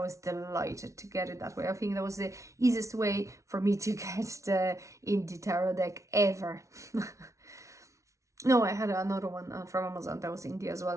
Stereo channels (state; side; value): late; left; 0.14 ms